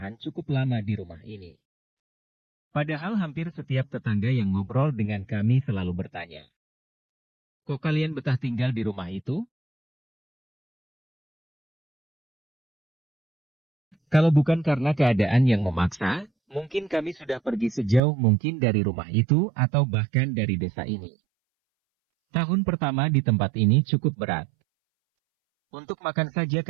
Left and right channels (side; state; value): left; drops out; at 18.0 s